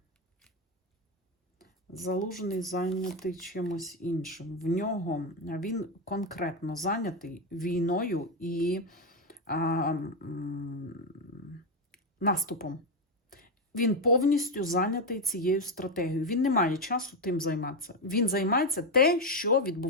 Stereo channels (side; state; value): both; normal; correlation 0.08